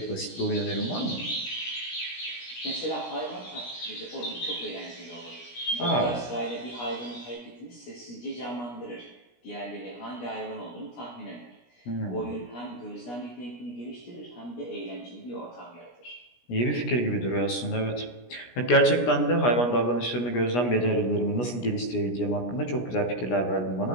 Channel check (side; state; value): right; late; 17 ms